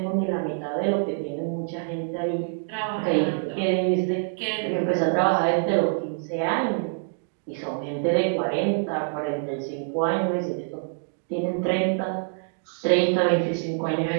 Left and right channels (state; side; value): silent; left; digital silence